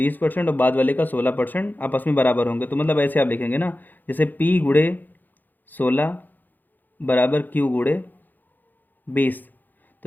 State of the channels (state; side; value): late; right; 0.086 ms